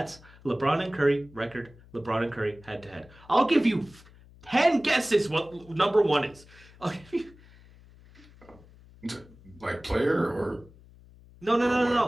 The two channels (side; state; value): left; noise; hum, 24 dB below the sound